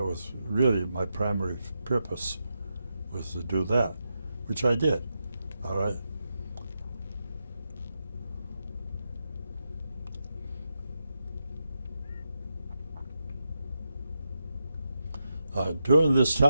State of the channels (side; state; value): both; inverted; correlation -0.86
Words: was really my primary purpose, was to do that, which I did. All right. During this